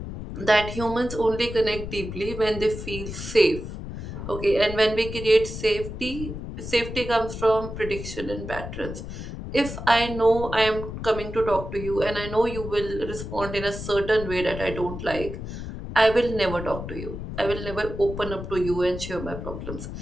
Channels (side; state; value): left; noise; rumble, 8 dB below the sound